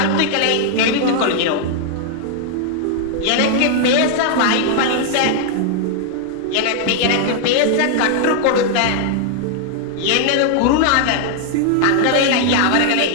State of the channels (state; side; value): different; both; correlation 0.00